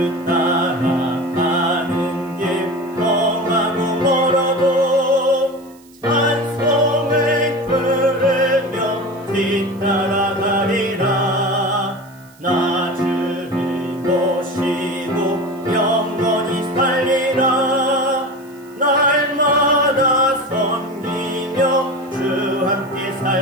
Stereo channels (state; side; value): noise; right; hiss, 28 dB below the sound